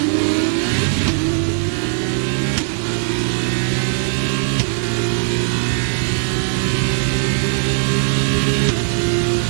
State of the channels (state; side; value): silent; left; 56 dB below the other